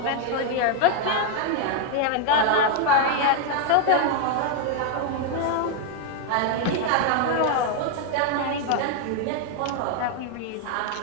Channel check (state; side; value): different; both; correlation 0.01